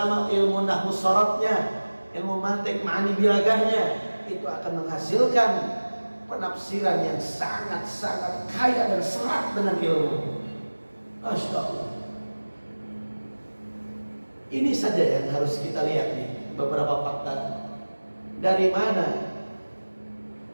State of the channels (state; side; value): inverted; both; correlation -1.00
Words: ilmu nahwu syaratnya, ilmu mantik ma'ani bilagahnya, itu akan menghasilkan penafsiran yang sangat-sangat kaya dan serat dengan ilmu. Masya Allah. Ini saja yang harus kita lihat nih, beberapa fakta. Dari mana